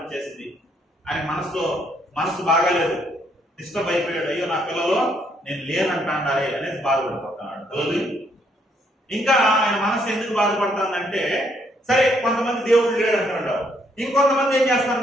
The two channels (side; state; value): both; normal; correlation 0.71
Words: ఆయన మనసు బాగాలేదు, డిస్టర్బ్ అయిపోయాడు. అయ్యో నా పిల్లలు నేను లేనంటాడారే అనేసి బాధపడిపోతున్నాడు. ఇంకా ఆయన మనసు ఎందుకు బాధపడుతుందంటే, సరే కొంతమంది దేవుడు లేడు అంటాడు, ఇంకొంతమంది ఏం